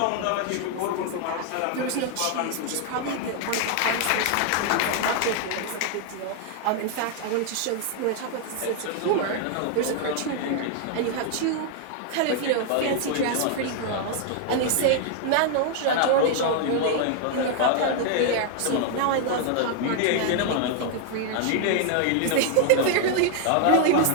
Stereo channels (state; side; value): different; both; correlation 0.00